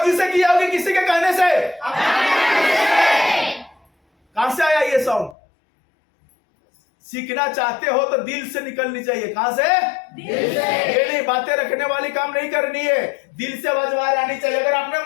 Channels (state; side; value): drops out; right; at 5.4 s